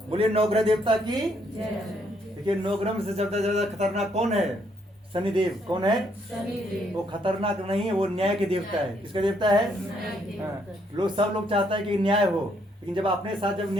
बोलिए नवग्रह देवता की। देखिए नवग्रह में से ज्यादा खतरनाक कौन है? शनिदेव। कौन है? शनिदेव। वो खतरनाक नहीं है, वो न्याय के देवता है। किसका देवता है? हाँ। लोग सब लोग चाहता है कि न्याय हो, लेकिन जब अपने साथ जब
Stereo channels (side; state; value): both; normal; correlation 0.71